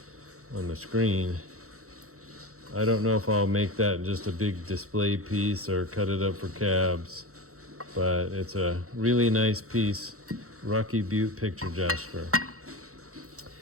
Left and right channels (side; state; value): left; late; 0.64 ms